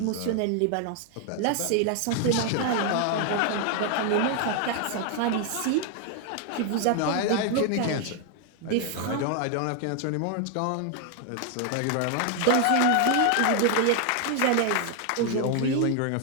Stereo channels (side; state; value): both; different; correlation 0.00